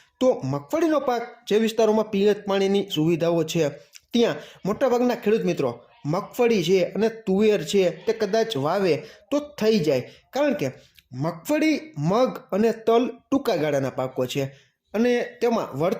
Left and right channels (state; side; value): identical; both; correlation 1.00